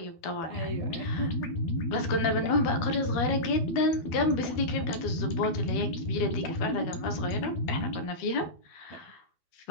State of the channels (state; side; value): late; right; 12 ms